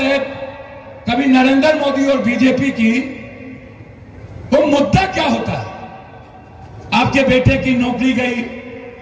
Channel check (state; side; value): identical; both; correlation 1.00